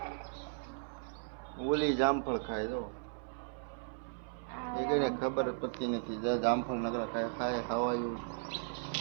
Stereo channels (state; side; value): silent; left; 54 dB below the other